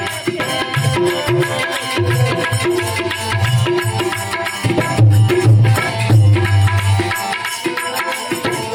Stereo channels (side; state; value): both; identical; correlation 1.00